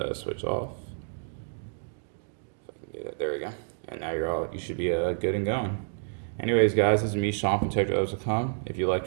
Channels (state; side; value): silent; left; digital silence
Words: switch off. If I can get it, there we go. And now you should be good and going. Anyways, guys, this is me, Sean from TechRadio.com. If you liked